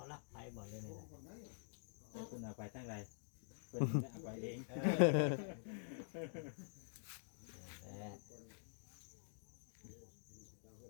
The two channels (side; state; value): right; silent; digital silence